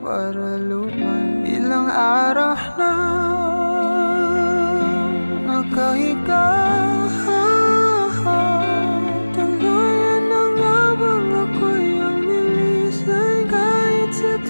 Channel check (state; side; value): inverted; both; correlation -1.00